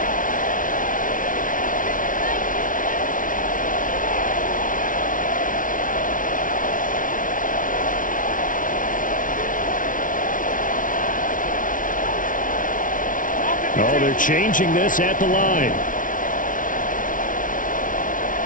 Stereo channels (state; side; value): late; right; 0.38 ms